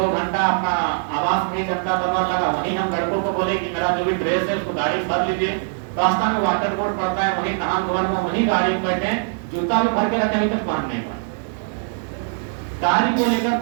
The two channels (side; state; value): left; silent; 65 dB below the other